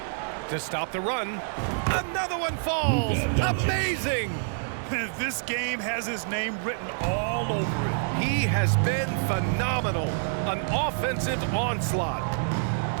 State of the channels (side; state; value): left; silent; 60 dB below the other